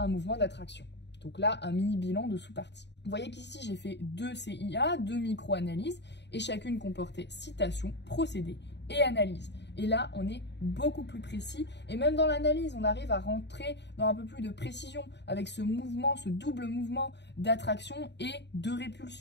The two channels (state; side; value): late; right; 0.50 ms